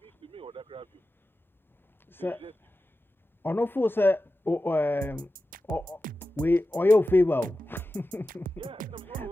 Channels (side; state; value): both; normal; correlation 0.93